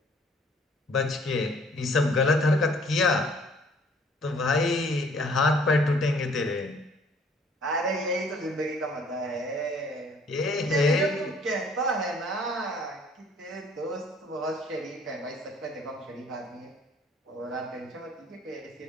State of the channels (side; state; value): both; normal; correlation 0.58